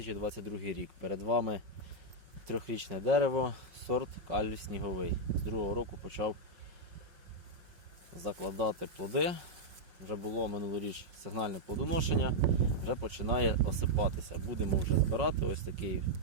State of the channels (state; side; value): late; left; 5.5 ms